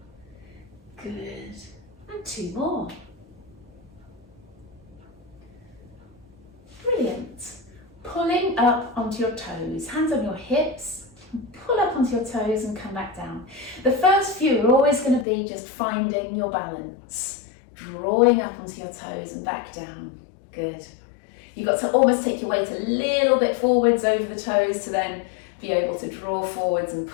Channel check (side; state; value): right; drops out; at 15.2 s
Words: Good. And two more. Brilliant. Pulling up onto your toes. Hands on your hips. Pull up onto your toes and come back down. The first few are always going to be just finding your balance. Drawing up onto your toes and back down. Good. You've got to almost take your weight a little bit forwards over the toes to then be able to draw forwards and